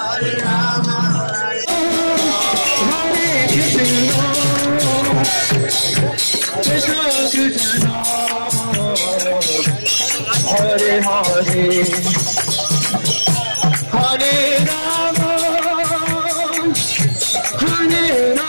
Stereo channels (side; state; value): both; inverted; correlation -1.00